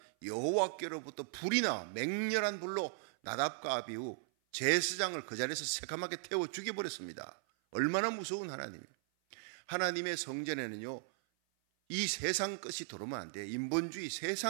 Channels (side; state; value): left; silent; 53 dB below the other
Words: 여호와께로부터 불이 나와 맹렬한 불로 나답과 아비후 제사장을 그 자리에서 새카맣게 태워 죽여버렸습니다. 얼마나 무서운 하나님이에요. 하나님의 성전에는요 이 세상 것이 들어오면 안 돼요. 인본주의